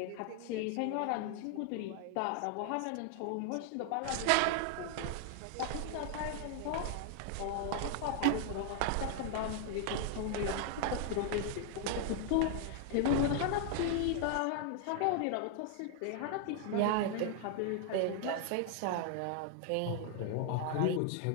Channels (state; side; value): different; both; correlation 0.00